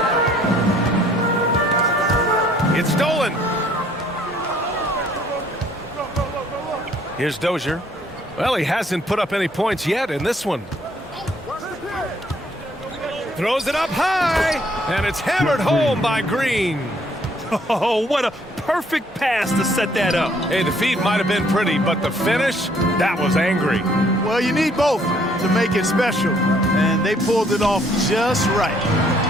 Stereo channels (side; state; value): both; normal; correlation 0.63